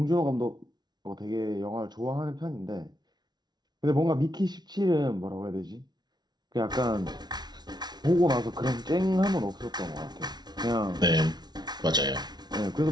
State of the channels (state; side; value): late; left; 0.20 ms